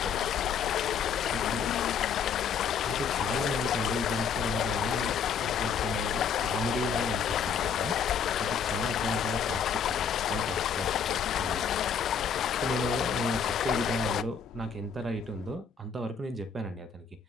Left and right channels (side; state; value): right; quieter; 6.5 dB